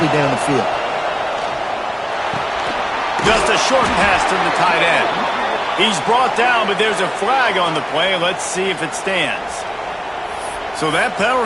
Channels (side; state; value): both; identical; correlation 1.00